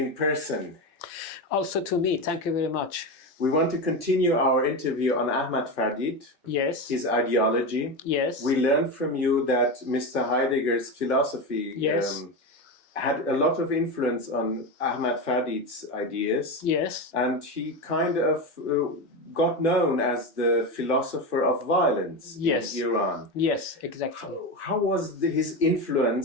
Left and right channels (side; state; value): both; normal; correlation 0.18